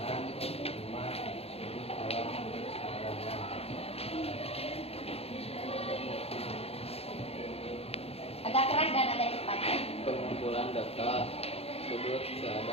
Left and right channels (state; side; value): late; right; 0.29 ms